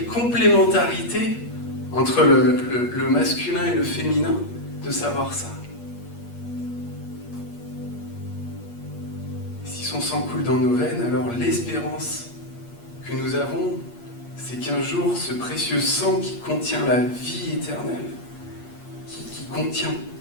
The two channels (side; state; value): right; late; 8.5 ms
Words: complémentarité entre le masculin et le féminin de savoir ça. Si son sang coule dans nos veines, alors l'espérance que nous avons, c'est qu'un jour, ce précieux sang qui contient la vie éternelle, qui contient